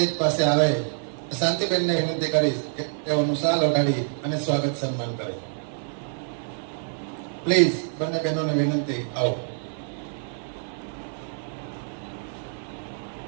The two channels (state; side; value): silent; left; 56 dB below the other